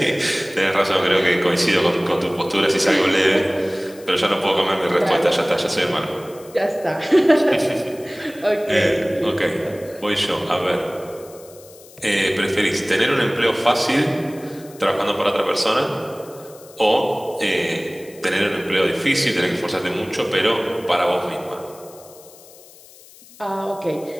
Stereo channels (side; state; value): left; noise; hiss, 22 dB below the sound